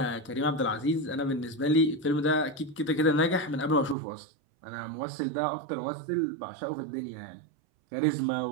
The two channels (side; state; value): left; drops out; at 4.0 s